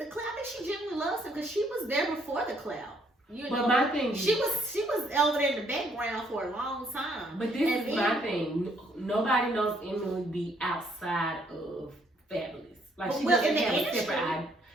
the clout. I think she genuinely loves him because she was there before the clout. But my thing, she was over there in the background for a long time. But this is my thing. Nobody knows Emily B outside of Fabulous. Like, she doesn't have a separate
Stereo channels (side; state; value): both; normal; correlation 0.68